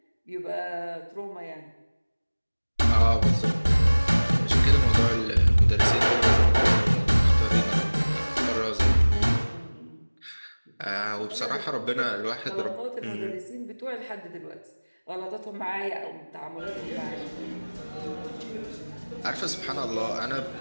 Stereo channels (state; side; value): inverted; both; correlation -1.00